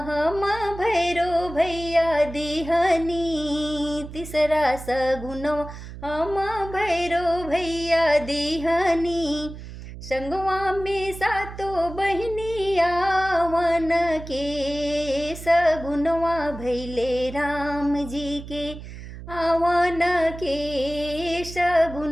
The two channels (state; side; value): noise; right; hum, 12 dB below the sound